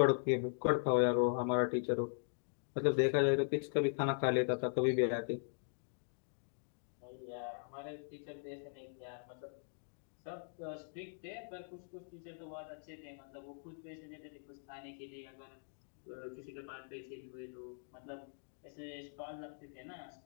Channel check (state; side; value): silent; right; digital silence